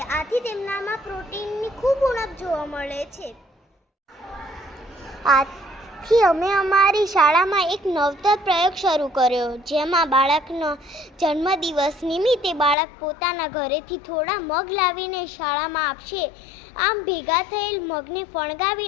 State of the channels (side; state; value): right; drops out; at 12.8 s